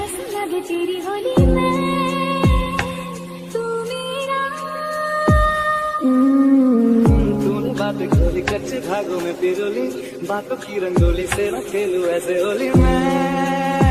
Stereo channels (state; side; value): identical; both; correlation 1.00